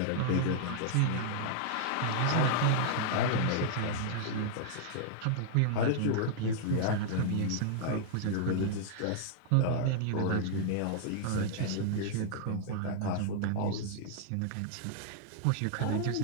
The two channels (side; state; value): both; different; correlation -0.01